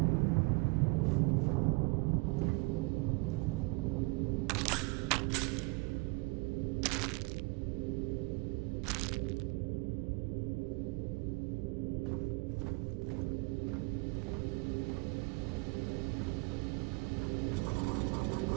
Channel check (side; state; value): left; quieter; 27.9 dB